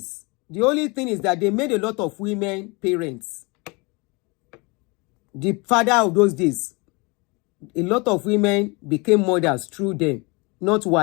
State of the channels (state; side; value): quieter; right; 27.9 dB